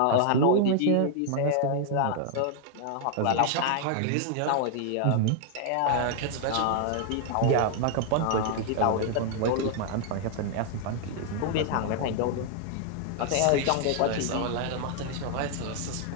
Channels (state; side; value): different; both; correlation 0.00